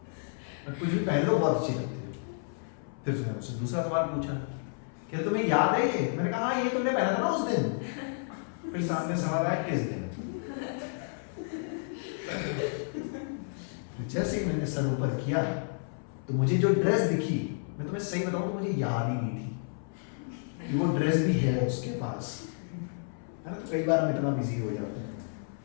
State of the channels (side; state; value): right; silent; 57 dB below the other